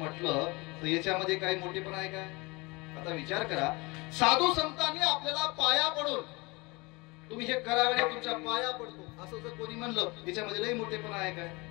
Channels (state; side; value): quieter; right; 25.4 dB